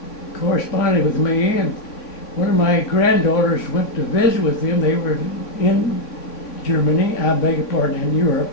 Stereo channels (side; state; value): right; late; 3.5 ms